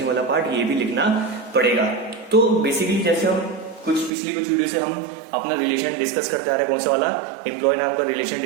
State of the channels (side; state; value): left; drops out; at 4.1 s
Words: वाला पार्ट, ये भी लिखना पड़ेगा। तो बेसिकली जैसे हम पिछली कुछ वीडियो से हम अपना रिलेशन डिस्कस करते आ रहे हैं, कौन सा वाला, एम्प्लॉय नाम का रिलेशन